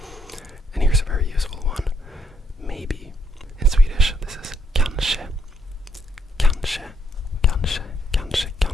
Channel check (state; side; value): normal; both; correlation 0.73